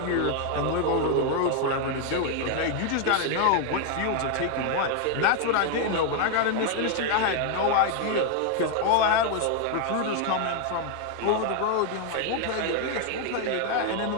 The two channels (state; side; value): different; both; correlation 0.01